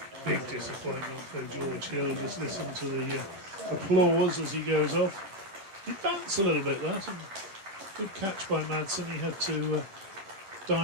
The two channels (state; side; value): late; left; 10 ms